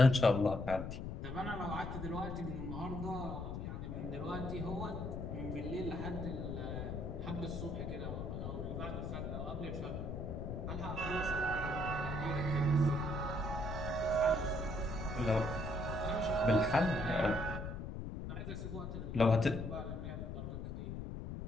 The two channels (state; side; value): noise; left; rumble, 5 dB below the sound